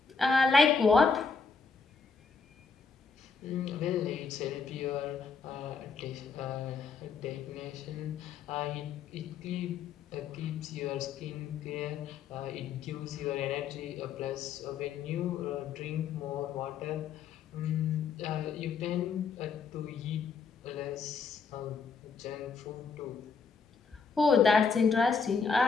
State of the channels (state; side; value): quieter; right; 5.2 dB